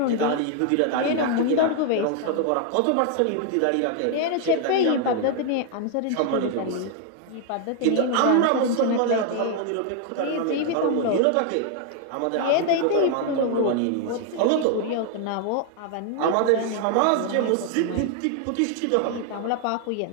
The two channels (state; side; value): different; both; correlation 0.00